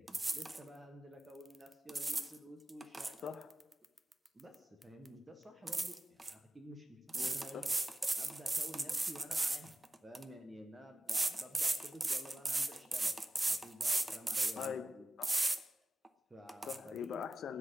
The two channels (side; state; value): both; normal; correlation 0.93